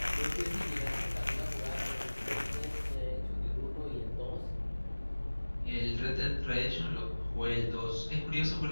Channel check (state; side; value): inverted; both; correlation -1.00